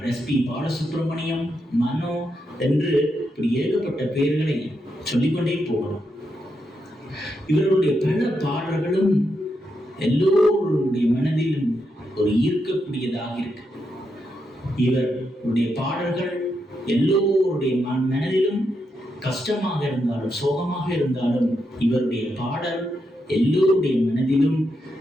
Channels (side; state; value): both; normal; correlation 0.83